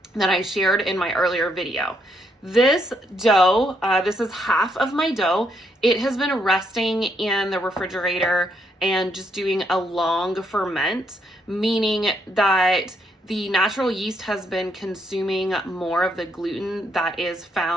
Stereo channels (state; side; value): normal; both; correlation 0.75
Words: that I shared in my earlier video. This dough, this is half of my dough. It has been resting in the refrigerator and just doing a long ferment, meaning that the natural yeast has been consuming more of the gluten that is